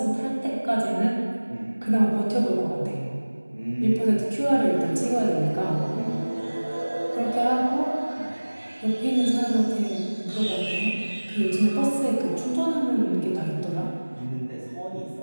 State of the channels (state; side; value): inverted; both; correlation -1.00